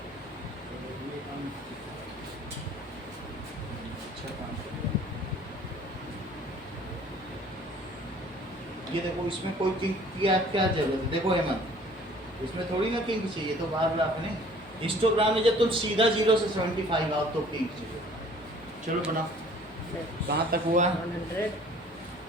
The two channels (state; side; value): noise; left; hum, 26 dB below the sound